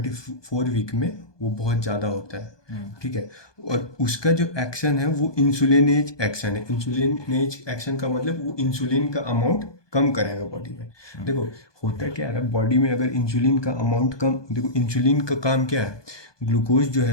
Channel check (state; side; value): late; right; 1.2 ms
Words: वीक में वो बहुत ज़्यादा होता है। ठीक है, और उसका जो एक्शन है वो इंसुलिनेज एक्शन है। इंसुलिनेज एक्शन का मतलब वो इंसुलिन का अमाउंट कम करेगा बॉडी में। देखो होता क्या है, बॉडी में अगर इंसुलिन का अमाउंट कम, देखो इंसुलिन का काम क्या है, ग्लूकोज जो